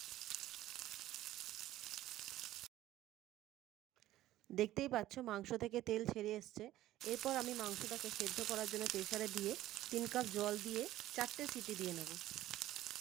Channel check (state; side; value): quieter; left; 14.6 dB